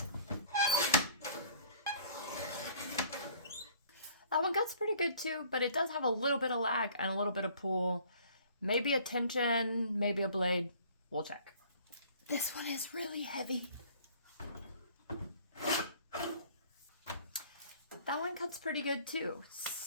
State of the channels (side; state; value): both; inverted; correlation -0.55